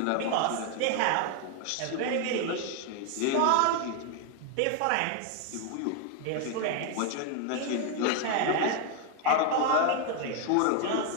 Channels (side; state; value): both; different; correlation 0.00